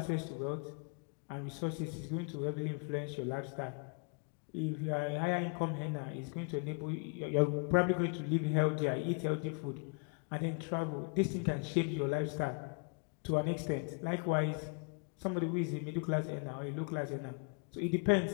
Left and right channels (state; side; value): quieter; right; 36.7 dB